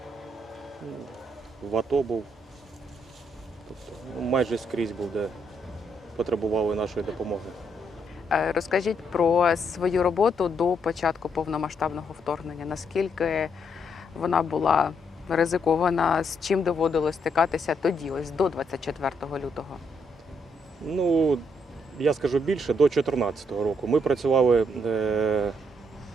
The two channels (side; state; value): both; normal; correlation 0.75